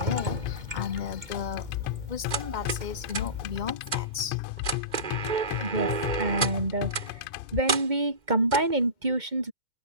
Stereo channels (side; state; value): left; late; 2.2 ms